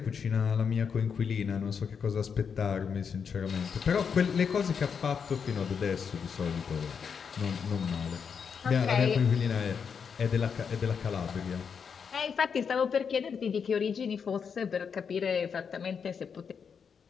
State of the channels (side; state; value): right; quieter; 6.5 dB